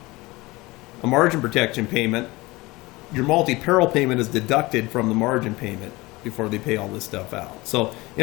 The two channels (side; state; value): right; quieter; 21.8 dB